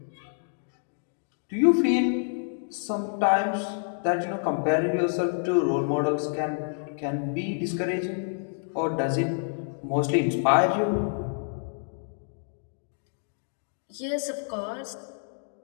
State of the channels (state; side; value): silent; right; digital silence